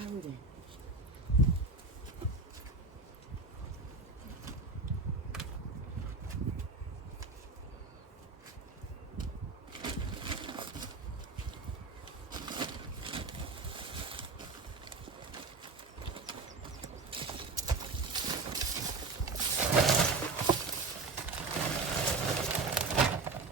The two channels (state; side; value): quieter; left; 3.9 dB